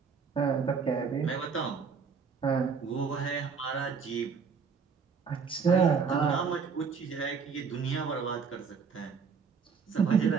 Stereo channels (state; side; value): quieter; left; 5.8 dB